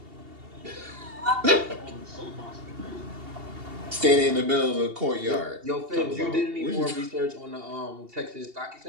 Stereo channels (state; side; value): late; left; 2.8 ms